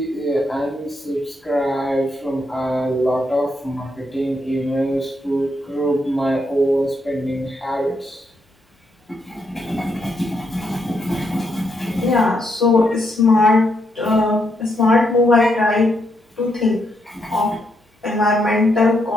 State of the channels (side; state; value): both; normal; correlation 0.78